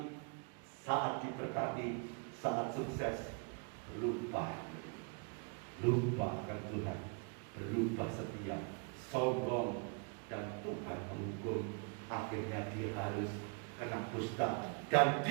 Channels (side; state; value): left; quieter; 37.4 dB